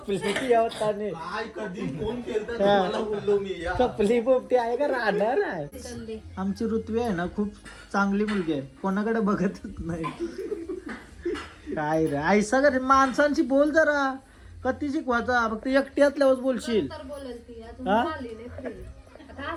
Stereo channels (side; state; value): both; identical; correlation 1.00